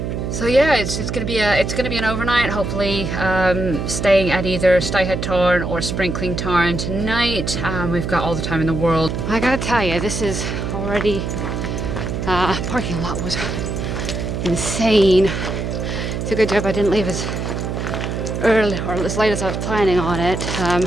So yeah, it's gonna be an overnight. Hopefully, staying at either Scafell Tarn or Sprinkling Tarn tonight. We've got all the time in the world. I gotta tell you, this is already parking lot was insane. It's a good job I didn't leave as early or as late as I was planning on it. A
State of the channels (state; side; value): noise; right; hum, 3 dB below the sound